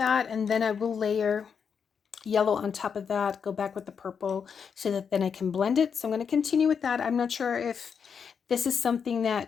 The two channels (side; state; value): right; quieter; 6.6 dB